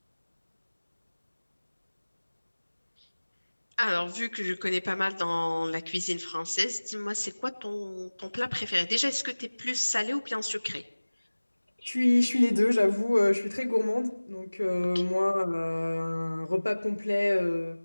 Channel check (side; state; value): both; inverted; correlation -1.00